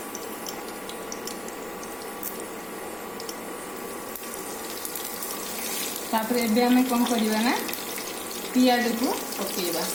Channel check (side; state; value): left; noise; rumble, 24 dB below the sound